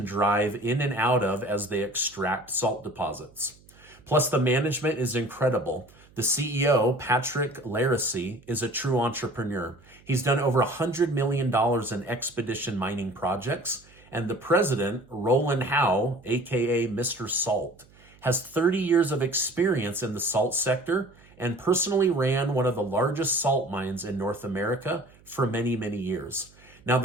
drive in and out of as they extract salt deposits. Plus, the management is incredible. The CEO, Patrick Laracy, is a true entrepreneur. He's done over $100 million in expedition mining projects, and the president, Roland Howe, aka Mr. Salt, has 30 years of experience in the salt sector and personally ran one of the largest salt mines in North America for many, many years. Now,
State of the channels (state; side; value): noise; right; hum, 27 dB below the sound